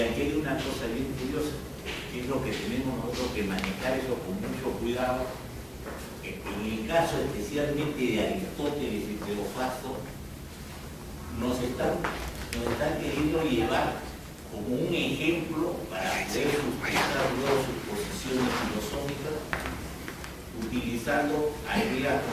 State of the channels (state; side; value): identical; both; correlation 1.00